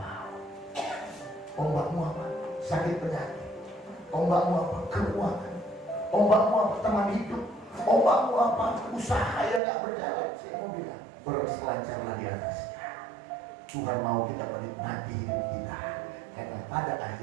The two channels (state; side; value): drops out; left; at 9.6 s